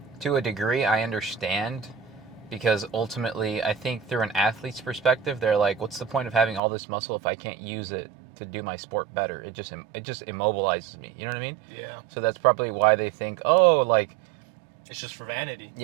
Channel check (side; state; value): left; drops out; at 6.6 s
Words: to a degree I understand, because ultimately I think through an athlete's perspective, they're like, what's the point of having all this muscle if I can't use it to do my sport better? It just immobilizes me. You know what I mean? Yeah. So that's probably why they think, oh, like, it's just for vanity.